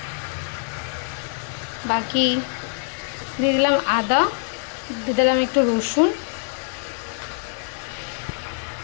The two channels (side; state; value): right; silent; 62 dB below the other